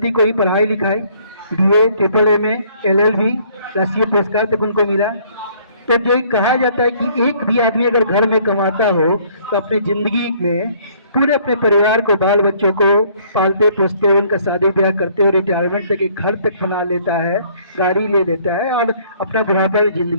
को ही पढ़ाई लिखाई, BA, MAAA, LLB, राष्ट्रीय पुरस्कार तक उनको मिला। तो जो कहा जाता है कि एक भी आदमी अगर घर में कमाता हो तो अपनी ज़िंदगी में पूरे अपने परिवार को, बाल बच्चों को पालते पोसते हुए, उनका शादी ब्याह करते हुए, रिटायरमेंट तक एक घर तक बना लेता है, गाड़ी ले लेता है और अपना बुढ़ापा में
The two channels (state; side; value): inverted; both; correlation -0.61